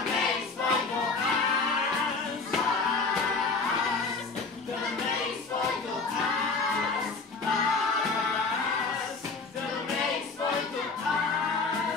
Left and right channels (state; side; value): quieter; right; 4.2 dB